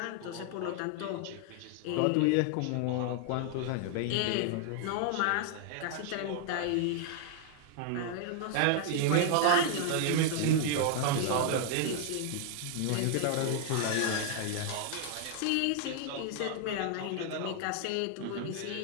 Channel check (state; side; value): different; both; correlation 0.00